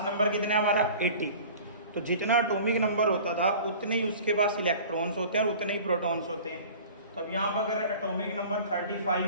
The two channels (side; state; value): both; inverted; correlation -0.43